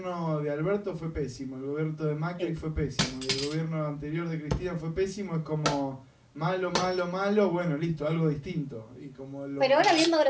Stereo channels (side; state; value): both; identical; correlation 1.00